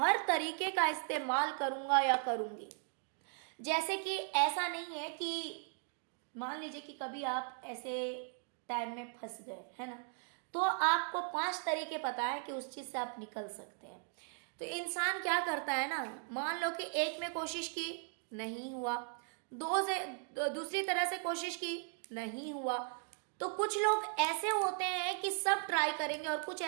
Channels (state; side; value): silent; left; 53 dB below the other